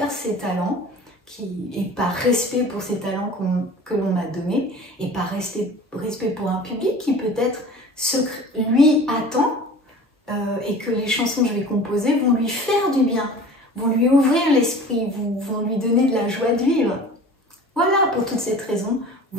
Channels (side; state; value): both; normal; correlation 0.41